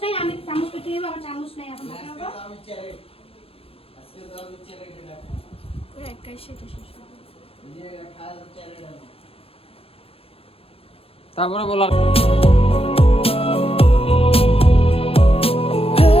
নাই, আমি চামচ কেটে নেবো, আমার চামচ নাই এখন দেখো। পুরো একাই সেটা শেষ হবে। তারপরে বলার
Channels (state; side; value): late; right; 0.28 ms